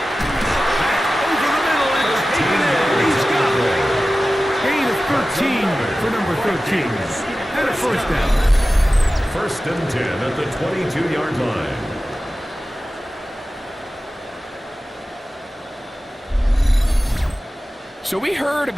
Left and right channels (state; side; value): normal; both; correlation 0.95